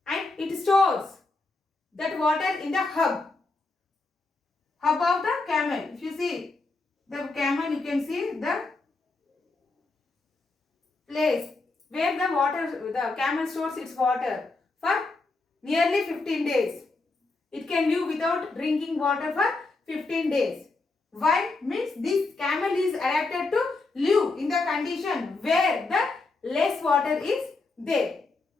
and it stores that water in the hub of the camel. If you see the camel, you can see the place where the camel stores its water for nearly 15 days. It can live without drinking water for 15 days. Why? Means this camel is adapted to live in the condition where the less water is there.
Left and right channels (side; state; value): right; quieter; 3.5 dB